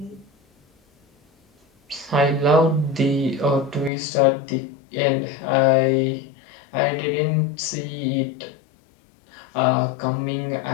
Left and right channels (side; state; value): right; drops out; at 3.9 s